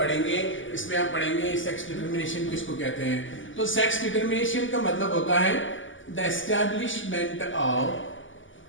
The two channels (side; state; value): right; late; 0.56 ms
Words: इसमें हम पढ़ेंगे सेक्स डिटर्मिनेशन किसको कहते हैं। तो सेक्स डिटर्मिनेशन का मतलब होता है the establishment of